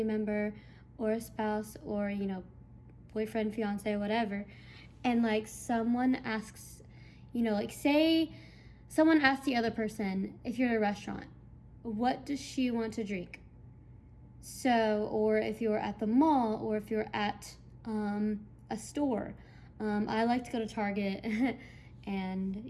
member or a spouse or, you know, boyfriend, fiance, whatever, and, like, someone asks, you know, like, say someone asks the other person, if you're at a restaurant, what does she want to drink? So, or if you're at the mall, or if you're at a store. I like to go to Target and,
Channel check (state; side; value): identical; both; correlation 1.00